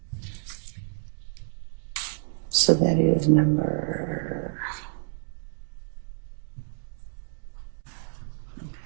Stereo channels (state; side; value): silent; left; digital silence